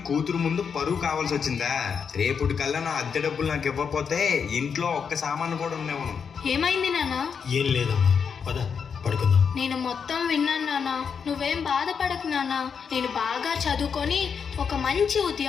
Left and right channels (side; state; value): right; quieter; 6.5 dB